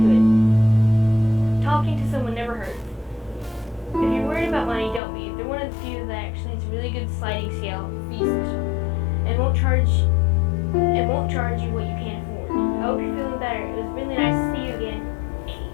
it. Talking to someone never hurts. If you're worried about money, don't be. They're one of the few that actually has a really good sliding scale fee system, and won't charge you what you can't afford. I hope you're feeling better. It was really nice to see you again.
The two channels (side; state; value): right; drops out; at 5.0 s